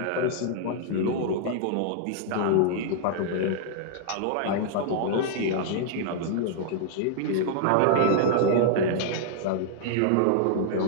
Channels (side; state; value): both; different; correlation -0.01